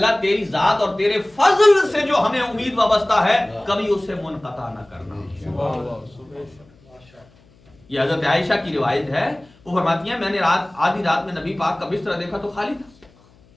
تیری ذات اور تیرے فضل سے جو ہمیں امید وابستہ ہے کبھی اس سے منقطع نہ کرنا. یہ حضرت عائشہ کی روایت ہے. وہ فرماتی ہیں میں نے آدھی رات میں نبی پاک کا بستر دیکھا تو خالی تھا.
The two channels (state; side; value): noise; left; hum, 29 dB below the sound